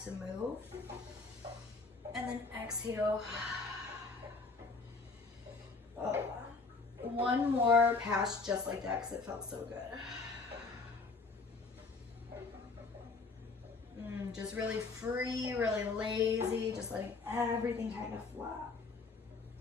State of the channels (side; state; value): right; quieter; 4.1 dB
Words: to move. And then exhale. One more pass just like that because it felt so good. Just really free, really lazy, just letting everything kind of flop.